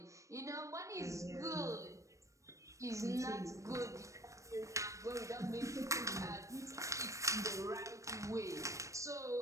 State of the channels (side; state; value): left; late; 0.15 ms